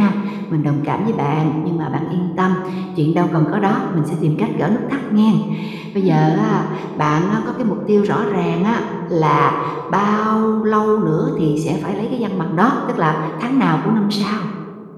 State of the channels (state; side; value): identical; both; correlation 1.00